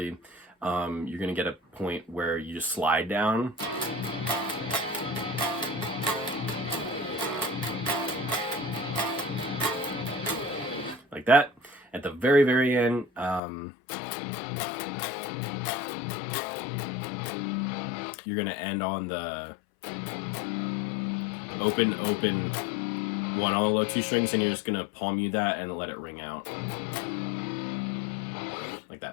you're gonna get a point where you just slide down. Like that. At the very, very end, you're gonna end on the open, open one on the low 2 strings, and you're just gonna palm mute that and let it ring out. Like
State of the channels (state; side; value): drops out; right; at 13.4 s